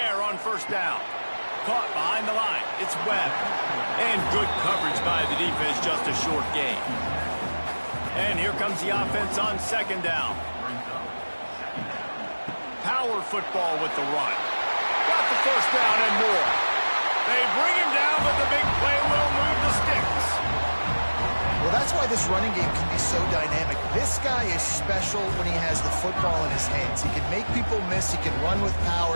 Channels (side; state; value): both; inverted; correlation -1.00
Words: on first down. Caught behind the line. It's Webb. And good coverage by the defense, just a short gain. And here comes the offense on second down. Power football with the run. Got the first down and more. They bring him down, but the big play will move the sticks. Well, that's why this running game can be so dynamic. This guy is special when he has the football in his hands. He can make people miss, he can run with